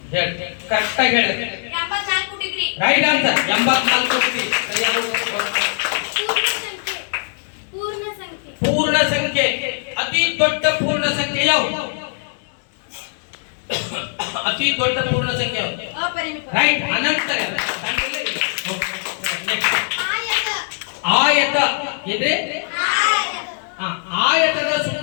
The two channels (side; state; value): right; silent; digital silence